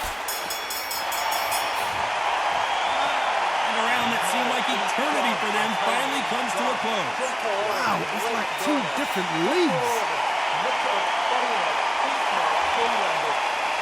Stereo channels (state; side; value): identical; both; correlation 1.00